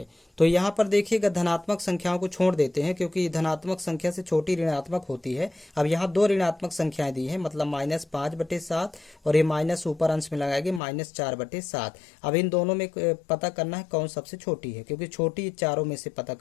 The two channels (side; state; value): right; drops out; at 10.8 s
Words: तो यहाँ पर देखिएगा धनात्मक संख्याओं को छोड़ देते हैं क्योंकि धनात्मक संख्या से छोटी ऋणात्मक होती है। अब यहाँ दो ऋणात्मक संख्याएं दी हैं, मतलब -5/7 और ये माइनस ऊपर अंश में लगाएंगे -4/7। अब इन दोनों में पता करना है कौन सबसे छोटी है, क्योंकि छोटी चारों में से पता